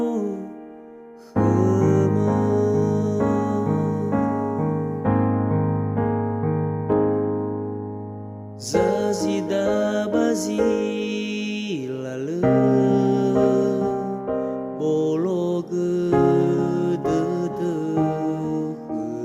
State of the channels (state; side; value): identical; both; correlation 1.00